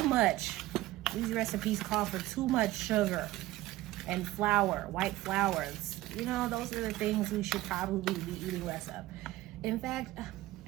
much. These recipes call for too much sugar and flour, white flours. You know, those are the things we should probably be eating less of. In fact,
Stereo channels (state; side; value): quieter; left; 17.0 dB